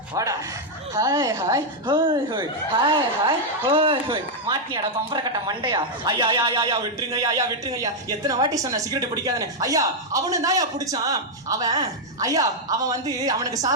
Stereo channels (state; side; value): normal; both; correlation -0.01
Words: ஹாய் ஹாய் ஹோய் ஹோய் ஹாய் ஹாய் ஹோய் ஹோய். மாட்டினியாடா பம்பர கட்ட மண்டையா? ஐயா ஐயா விட்டுருங்க ஐயா. எத்தனை வாட்டி சொன்ன சிகரெட் பிடிக்காதுன்னு? ஐயா அவனு தான் பிடிச்சான். அவன் வந்து அவனுக்கு